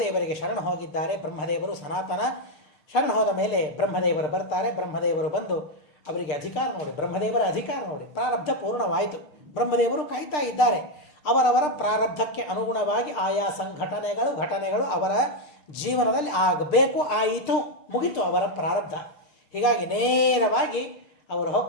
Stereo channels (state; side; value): late; right; 6.6 ms